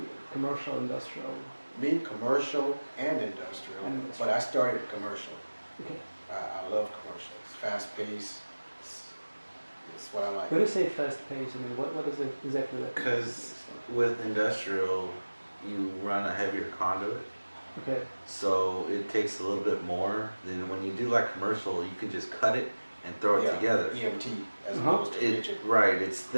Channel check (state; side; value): inverted; both; correlation -1.00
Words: commercial, industrial? Me, commercial and industrial, but I started commercial. Okay. I love commercial. It's fast paced. It's what I like. When you say fast pace, I mean, what is it exactly that? Because with industrial, you run a heavier conduit. Okay. So it takes a little bit more than when you do like commercial, you can just cut it and throw it together. EMT as opposed to rigid. Right, it's